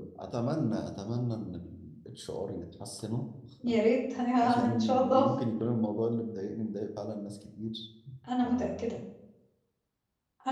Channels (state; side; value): identical; both; correlation 1.00